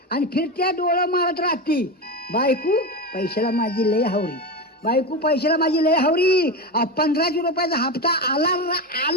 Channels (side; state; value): both; normal; correlation 0.19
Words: आणि फिरत्या डोळं मारत राहती. बायको पैशाला माझी लय हावरी, बायको पैशाला माझी लय हावरी. 1500 रुपयाचा हप्ता आला